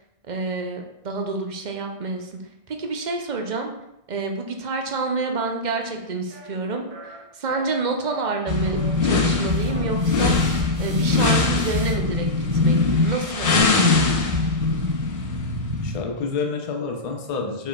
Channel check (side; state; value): left; late; 1.6 ms